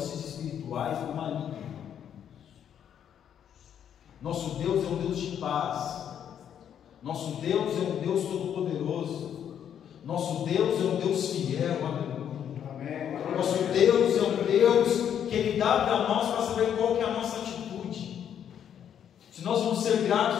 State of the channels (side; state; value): right; quieter; 9.1 dB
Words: espirituais do maligno. Nosso Deus é um Deus de paz. Nosso Deus é um Deus todo-poderoso. Nosso Deus é um Deus fiel. Amém. Nosso Deus é um Deus que Ele dá para nós para saber qual que é a nossa atitude. Se nós vamos ser